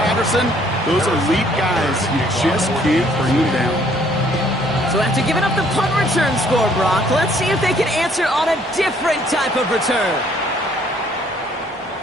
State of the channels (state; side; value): normal; both; correlation 0.62